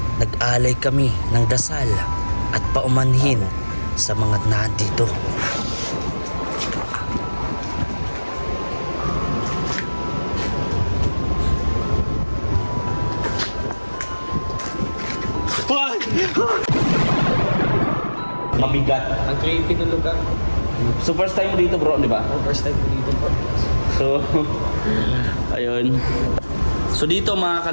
Nag-alay kami ng dasal at paumanhin sa mga nandito. Mabigat. Ang creepy ng lugar. So first time dito bro, di ba? First time ko dito po. So, ayun. So dito mga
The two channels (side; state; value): both; inverted; correlation -1.00